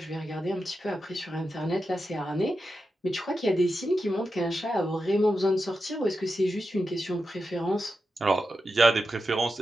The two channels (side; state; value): both; normal; correlation 0.89